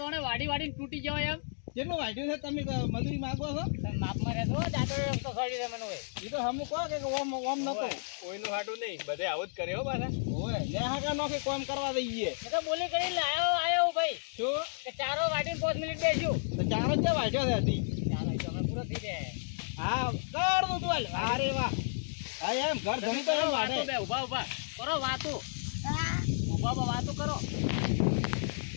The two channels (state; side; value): silent; right; digital silence